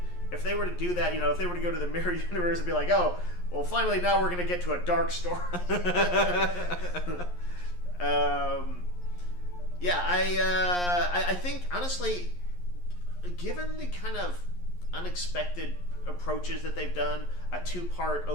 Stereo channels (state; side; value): late; right; 11 ms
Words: if they were to do that, if they were to go to the mirror universe and be like, oh, well, finally now we're going to get to a dark story. I think, honestly, given the kind of unexpected approaches that they've done, a 2-part